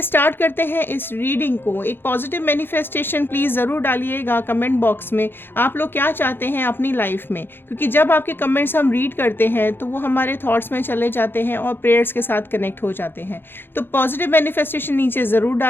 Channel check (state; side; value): late; right; 0.10 ms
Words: स्टार्ट करते हैं इस रीडिंग को। एक पॉजिटिव मैनिफेस्टेशन प्लीज़ ज़रूर डालिएगा कमेंट बॉक्स में, आप लोग क्या चाहते हैं अपनी लाइफ में, क्योंकि जब आपके कमेंट्स हम रीड करते हैं तो वो हमारे थॉट्स में चले जाते हैं और प्रेयर्स के साथ कनेक्ट हो जाते हैं। तो पॉजिटिव मैनिफेस्टेशन नीचे ज़रूर